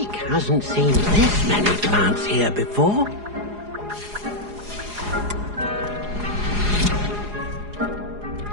hasn't seen this many plants here before.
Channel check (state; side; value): late; left; 4.8 ms